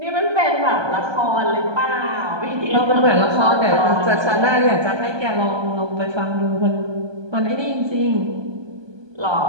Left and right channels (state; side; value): late; left; 1.2 ms